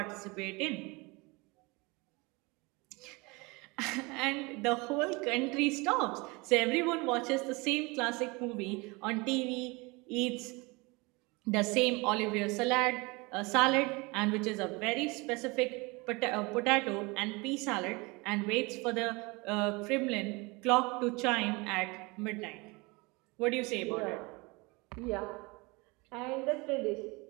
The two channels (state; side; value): quieter; left; 26.0 dB